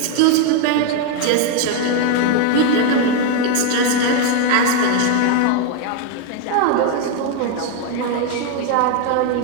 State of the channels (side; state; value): both; different; correlation 0.01